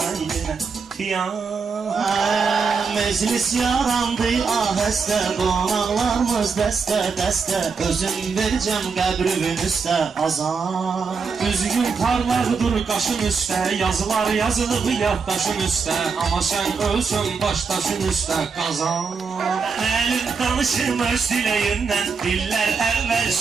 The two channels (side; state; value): left; quieter; 5.2 dB